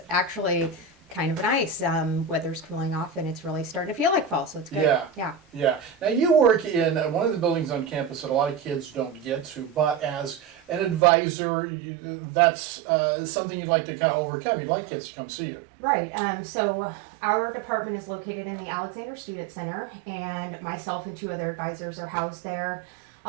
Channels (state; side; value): drops out; left; at 11.0 s